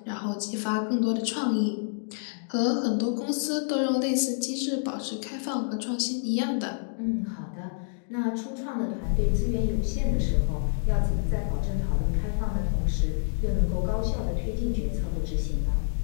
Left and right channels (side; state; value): right; silent; digital silence